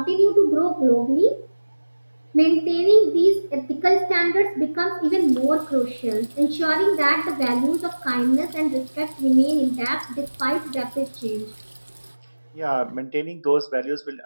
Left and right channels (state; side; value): inverted; both; correlation -1.00